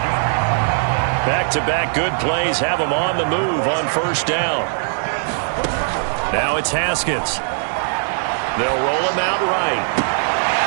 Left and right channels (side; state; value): left; silent; digital silence